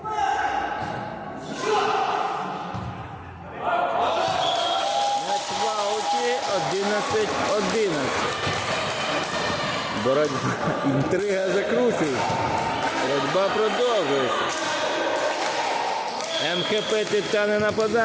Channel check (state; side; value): identical; both; correlation 1.00